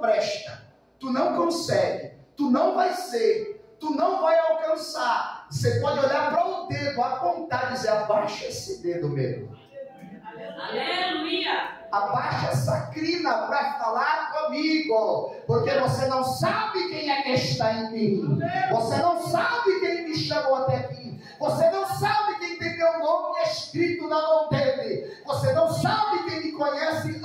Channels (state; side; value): identical; both; correlation 1.00